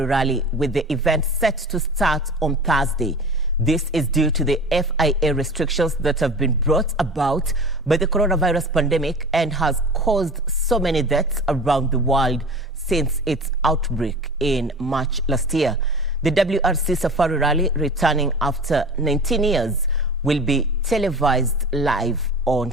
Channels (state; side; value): normal; both; correlation 0.37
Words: Rally, with the event set to start on Thursday. This is due to the FIA restrictions that have been brought about by the coronavirus pandemic and has caused so many deaths around the world since its outbreak in March last year. The WRC Safari Rally, returning after 19 years, will be televised live on